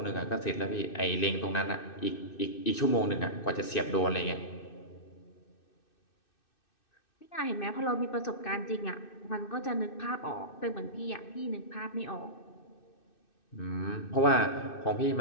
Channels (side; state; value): right; late; 2.6 ms